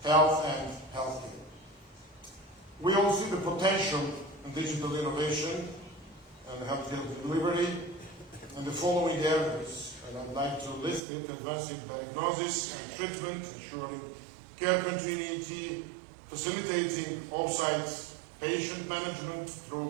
health and healthcare. We all see the potential in digital innovation and healthcare delivery in the following areas, and I'd like to list it: advancing diagnosis and treatment, ensuring care continuity, facilitating off-site patient management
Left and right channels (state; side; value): drops out; left; at 11.0 s